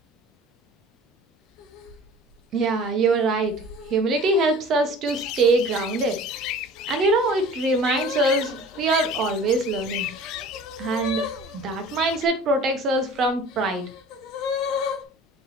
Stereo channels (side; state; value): both; normal; correlation 0.44